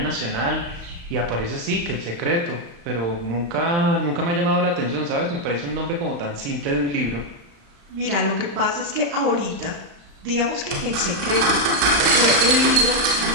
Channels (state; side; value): late; left; 35 ms